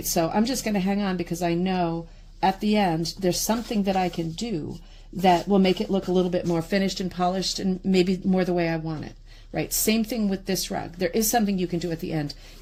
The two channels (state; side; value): identical; both; correlation 1.00